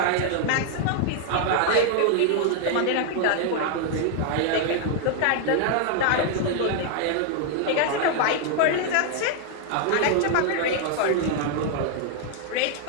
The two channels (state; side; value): different; both; correlation 0.00